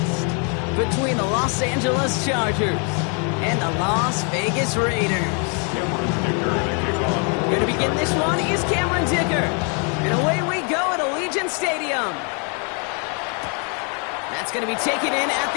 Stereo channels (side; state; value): right; quieter; 37.7 dB